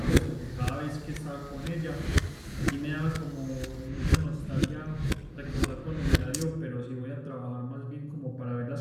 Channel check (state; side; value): identical; both; correlation 1.00